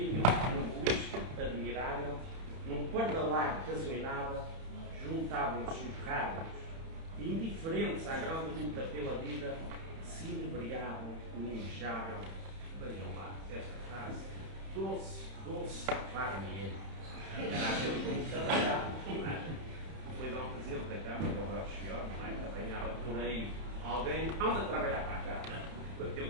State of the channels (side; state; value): left; late; 31 ms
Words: num boliche admirável, num pardalar que azuinava, juntavam-se os raros e, indiferentes à grande luta pela vida, se inebriavam no inchavel. Vejam lá esta frase: doce farmigueiro. Era aquele que trabalhava, não é? depois ao Presidente da Câmara, ao Belchior, que apanhava por aí alguém, anda a trabalhar para a Câmara,